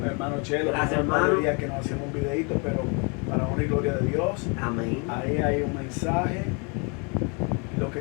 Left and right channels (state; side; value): quieter; right; 33.7 dB